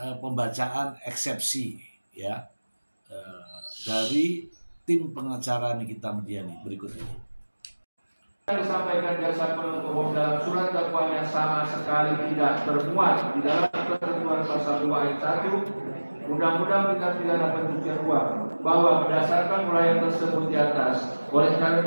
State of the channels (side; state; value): both; inverted; correlation -1.00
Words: pembacaan eksepsi ya dari tim pengacara Nikita Mirzani berikut ini. Yang disampaikan jaksa penuntut umum dalam surat dakwaan yang sama sekali tidak termuat di dalam ketentuan pasal 2 ayat 1 Undang-Undang Tindak Pidana Pencucian Uang, bahwa berdasarkan uraian tersebut di atas, oleh